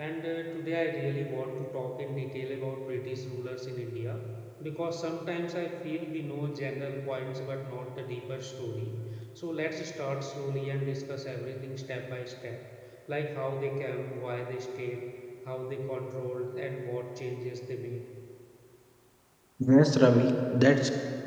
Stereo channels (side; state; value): both; identical; correlation 1.00